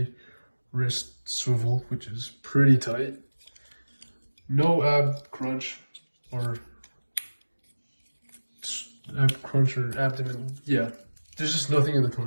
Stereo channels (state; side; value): inverted; both; correlation -1.00